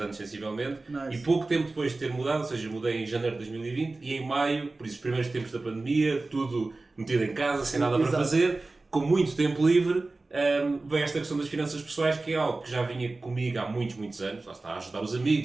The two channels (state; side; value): quieter; left; 3.3 dB